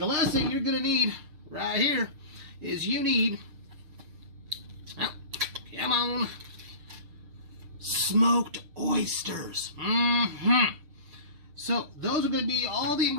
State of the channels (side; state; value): left; late; 6.6 ms